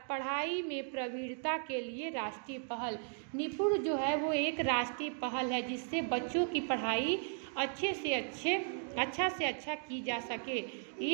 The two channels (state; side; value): silent; left; 54 dB below the other